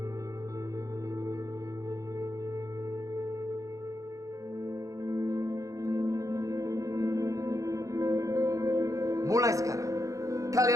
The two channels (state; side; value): late; left; 0.16 ms